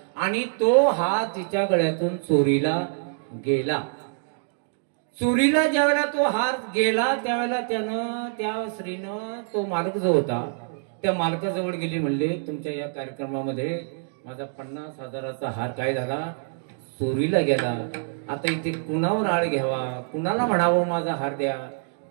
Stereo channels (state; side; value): silent; left; 61 dB below the other